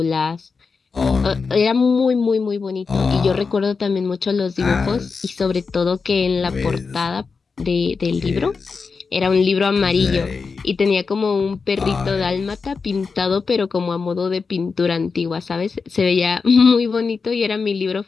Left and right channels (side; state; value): right; quieter; 4.9 dB